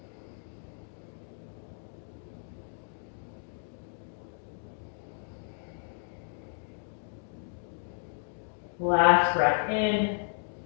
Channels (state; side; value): silent; right; digital silence